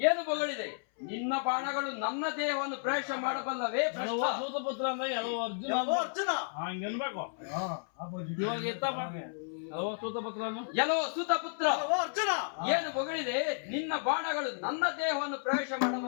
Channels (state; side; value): silent; right; 56 dB below the other